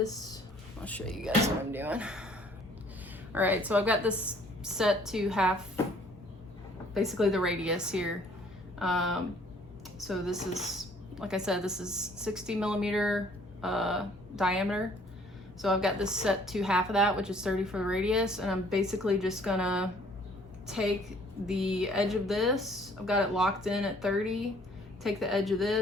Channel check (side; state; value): both; normal; correlation 0.58